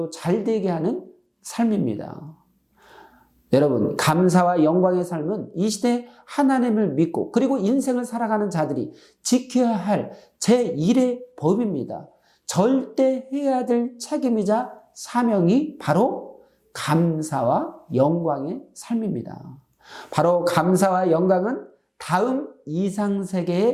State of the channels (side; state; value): both; identical; correlation 1.00